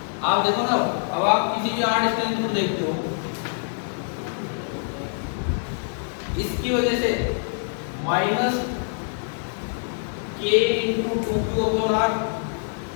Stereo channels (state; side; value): silent; right; digital silence